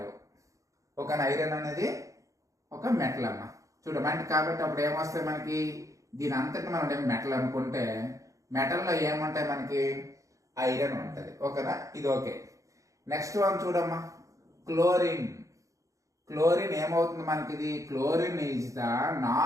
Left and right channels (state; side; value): late; left; 0.16 ms